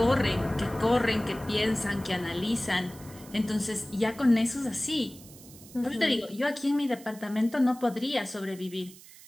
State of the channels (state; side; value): noise; right; hiss, 20 dB below the sound